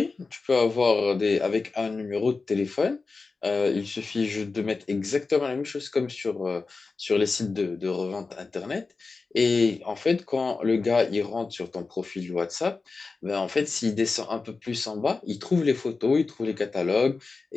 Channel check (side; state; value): right; quieter; 4.1 dB